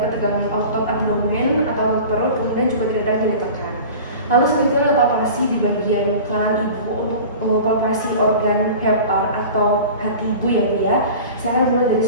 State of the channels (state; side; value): inverted; both; correlation -0.38